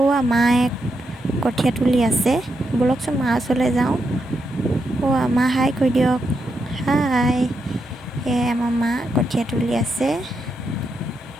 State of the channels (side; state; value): both; normal; correlation 0.83